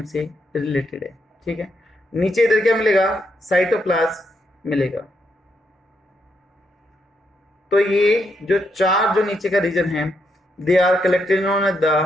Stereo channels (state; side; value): normal; both; correlation 0.79